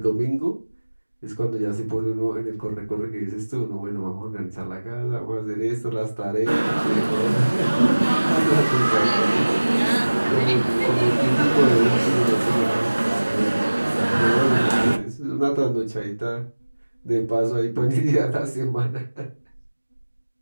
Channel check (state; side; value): inverted; both; correlation -1.00